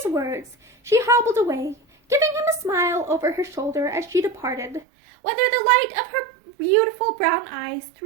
words, she hobbled away, giving him a smile over her shoulder as she departed. Whether the light of her beautiful brown eyes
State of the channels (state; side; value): drops out; left; at 4.9 s